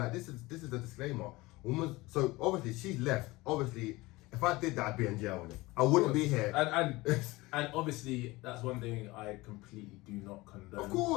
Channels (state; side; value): quieter; right; 21.1 dB